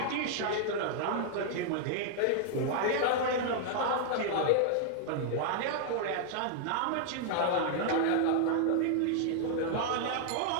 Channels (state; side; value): different; both; correlation -0.01